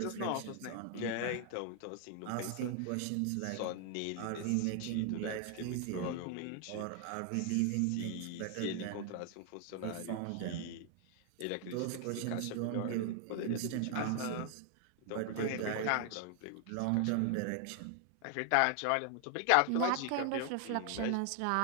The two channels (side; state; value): both; different; correlation 0.00